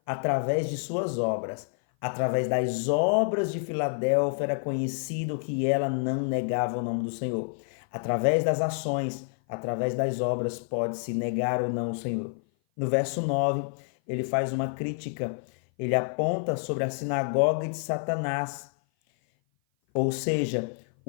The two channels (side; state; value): right; silent; 56 dB below the other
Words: através de suas obras. Através das obras de Filadélfia era conhecido que ela não negava o nome do Senhor. Através das ações, através das obras, pode-se negar ou não o Senhor. No verso 9, ele faz uma crítica. Ele aponta sobre a sinagoga de Satanás, ou seja,